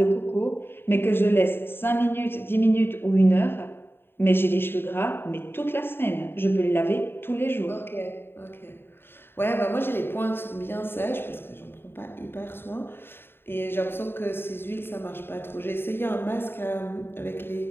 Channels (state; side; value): late; right; 0.11 ms